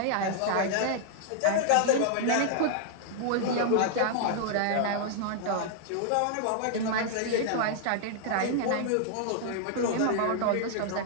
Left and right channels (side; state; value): both; different; correlation -0.01